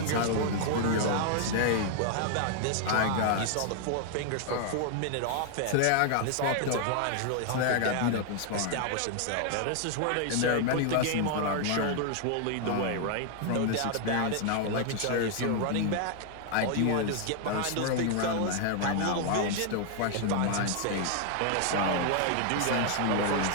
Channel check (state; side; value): different; both; correlation 0.00